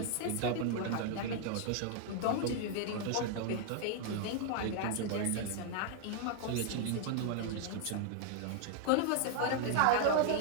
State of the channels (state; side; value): different; both; correlation 0.00